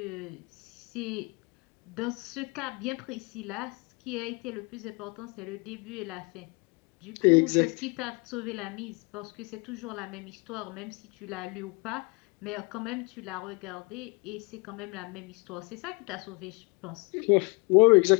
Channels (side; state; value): right; quieter; 29.8 dB